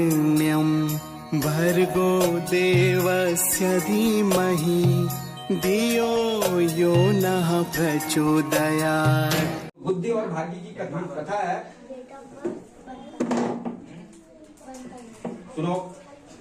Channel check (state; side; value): identical; both; correlation 1.00